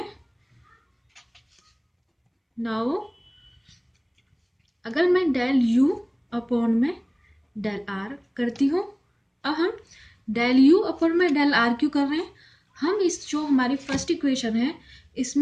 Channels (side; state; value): both; identical; correlation 1.00